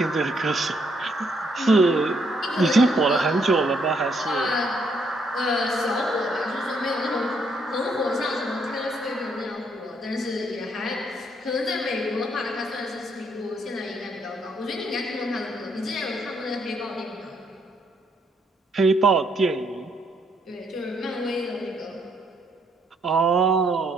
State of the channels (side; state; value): both; normal; correlation 0.72